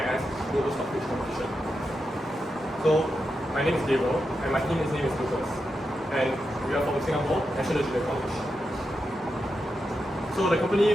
Global Stock Pitch Competition. So, my name is Gabriel and my team's name is Lucas, and we are from Singapore National Junior College. So the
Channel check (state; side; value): normal; both; correlation 0.87